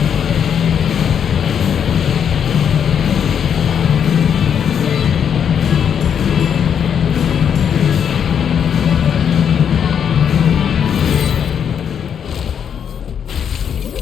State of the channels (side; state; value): right; quieter; 8.0 dB